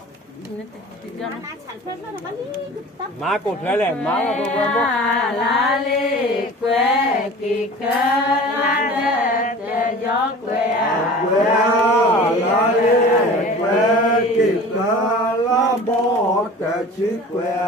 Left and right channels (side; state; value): both; normal; correlation 0.40